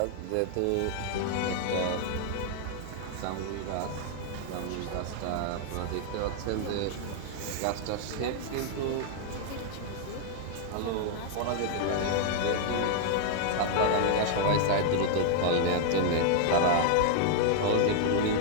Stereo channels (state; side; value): different; both; correlation -0.01